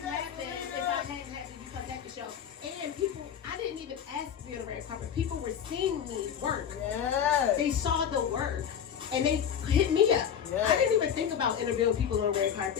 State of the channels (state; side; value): quieter; right; 8.4 dB